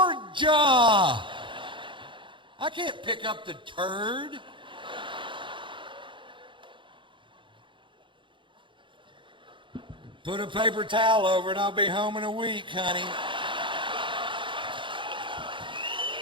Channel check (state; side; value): late; left; 0.24 ms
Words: I can't pick up the turd. Put a paper towel over it, I'll be home in a week, honey.